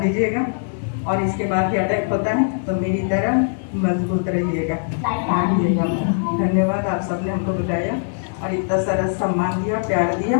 दीजिएगा। और इसके बाद भी अटैक होता है तो मेरी तरह मजबूत रहिएगा। धन्यवाद, आप सबने हमको बुलाया और इतना सारा सम्मान दिया, प्यार दिया।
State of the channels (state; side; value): silent; right; digital silence